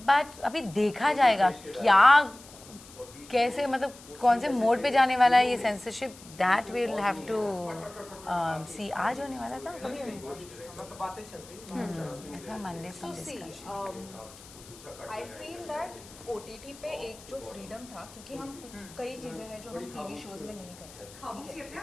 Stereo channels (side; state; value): left; noise; hiss, 20 dB below the sound